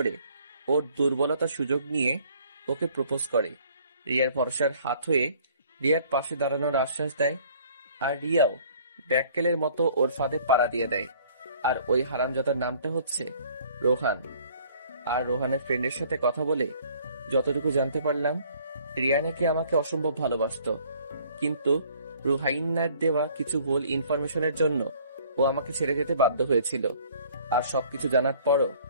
ওর দুর্বলতার সুযোগ নিয়ে ওকে প্রপোজ করে। রিয়ার ভরসার হাত হয়ে রিয়ার পাশে দাঁড়ানোর আশ্বাস দেয়। আর রিয়াও ব্যাককেলের মতো ওর ফাঁদে পাড়া দিয়ে দেয়। আর ওই হারামজাদার নামটা হচ্ছে রোহান। আর রোহানের ফ্রেন্ডের সাথে কথা বলে যতটুকু জানতে পারলাম রিয়া নাকি আমাকে অসম্ভব ভালোবাসতো, কিন্তু রুহাইন্নার দেওয়া কিছু ভুল ইনফরমেশনের জন্য ও আমাকে ছেড়ে যেতে বাধ্য হয়েছিল। আর সবকিছু জানার পরও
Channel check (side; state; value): both; inverted; correlation -0.57